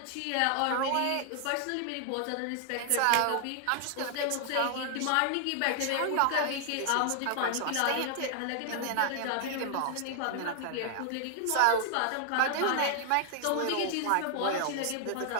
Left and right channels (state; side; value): different; both; correlation 0.00